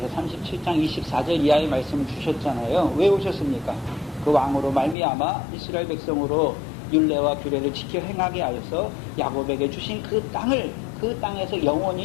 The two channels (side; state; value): right; drops out; at 5.0 s